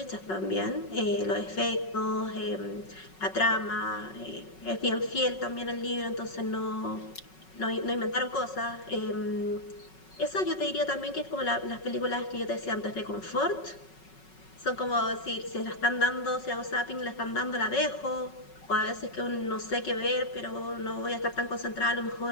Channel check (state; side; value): late; right; 5.4 ms